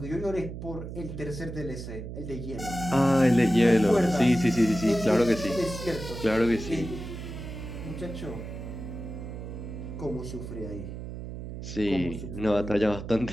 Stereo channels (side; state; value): right; noise; hum, 9 dB below the sound